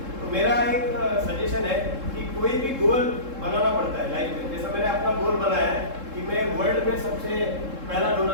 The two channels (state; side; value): late; left; 3.7 ms